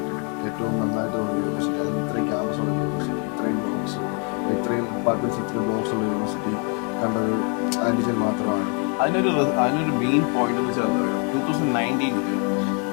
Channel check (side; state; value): right; quieter; 37.7 dB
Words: ഏറ്റവും നന്നായിട്ട് തോന്നിയ യൂണിവേഴ്സിറ്റി. അതിന് ഇത്രയും ക്യാമ്പസ് ഉള്ള യൂണിവേഴ്സിറ്റി, ഇത്രയും ബ്ലോക്സ്, ഇത്രയും ഡിപ്പാർട്ട്മെൻറ്റ്സ്, ഇത്രയും ബ്ലോക്സ് ഉള്ള യൂണിവേഴ്സിറ്റി കണ്ടത് ആൻറ്റിജൻ മാത്രമാണ്. അതിനൊരു മെയിൻ പോയിന്റ് എന്ന് വെച്ചാൽ 2019